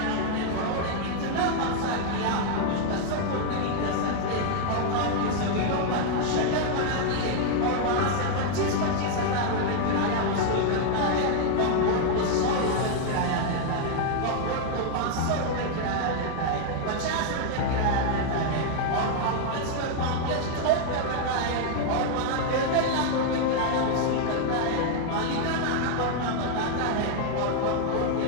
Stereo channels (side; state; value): both; different; correlation 0.00